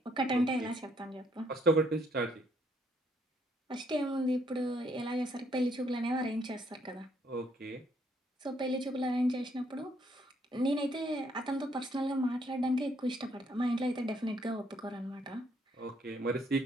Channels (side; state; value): both; normal; correlation 0.70